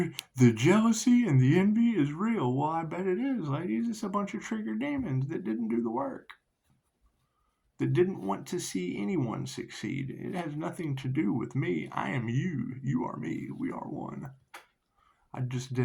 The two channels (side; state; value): both; identical; correlation 1.00